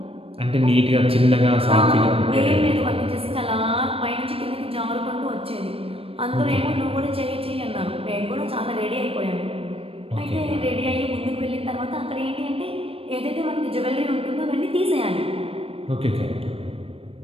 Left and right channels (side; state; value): left; late; 0.28 ms